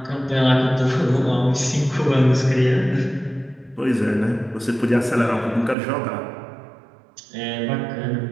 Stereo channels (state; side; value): drops out; left; at 5.8 s